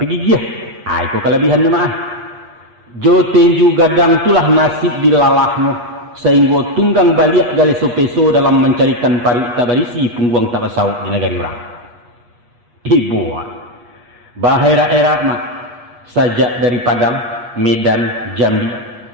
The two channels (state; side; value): late; left; 8.4 ms